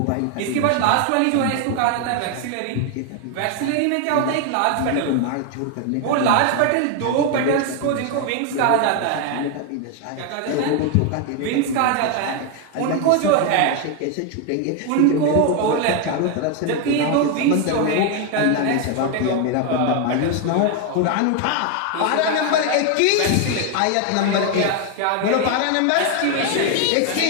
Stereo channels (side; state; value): both; different; correlation 0.01